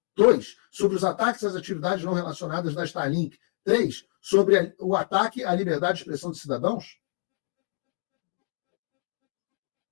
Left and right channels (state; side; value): silent; right; digital silence